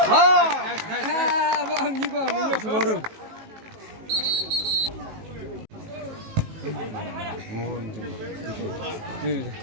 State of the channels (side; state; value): left; late; 19 ms